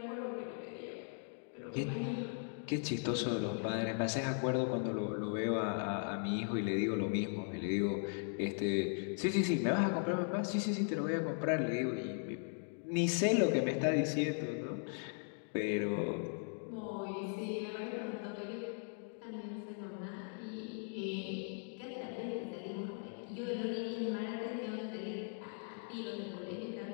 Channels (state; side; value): silent; right; 52 dB below the other